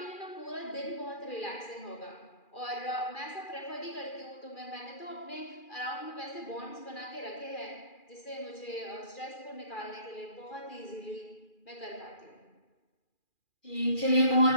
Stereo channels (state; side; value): late; right; 2.4 ms